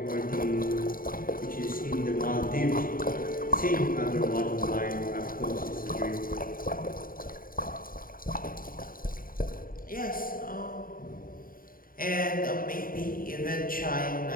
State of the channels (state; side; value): late; right; 0.41 ms